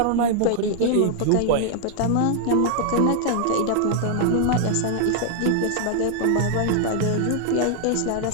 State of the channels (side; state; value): both; different; correlation 0.00